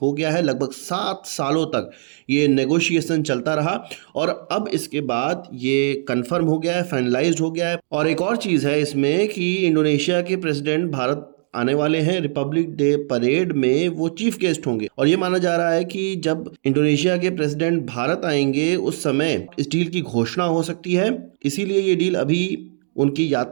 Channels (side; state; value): left; silent; digital silence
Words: हो गया है। लगभग 7 सालों तक ये नेगोशिएशन चलता रहा और अब इसके बाद ये कंफर्म हो गया है, फाइनलाइज्ड हो गया है। और एक और चीज़ है इसमें कि इंडोनेशिया के प्रेसिडेंट भारत आने वाले हैं। रिपब्लिक डे परेड में वो चीफ गेस्ट होंगे और ये माना जा रहा है कि जब इंडोनेशिया के प्रेसिडेंट भारत आएंगे उस समय इस डील की घोषणा हो सकती है। इसीलिए ये डील अभी उनकी